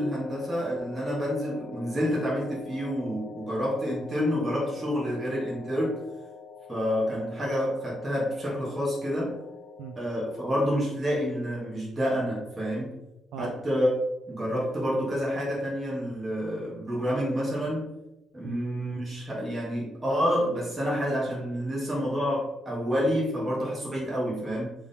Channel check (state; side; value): normal; both; correlation 0.83